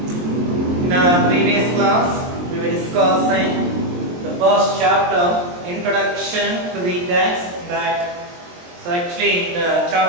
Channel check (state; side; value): late; left; 23 ms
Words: In our previous class, we were discussing the first chapter, Introduction to the Text. So actually, the